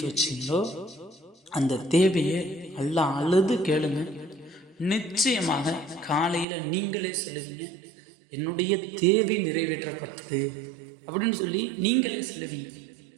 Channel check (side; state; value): left; drops out; at 6.5 s